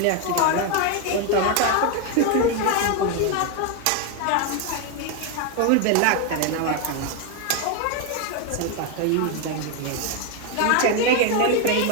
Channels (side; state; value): both; different; correlation 0.01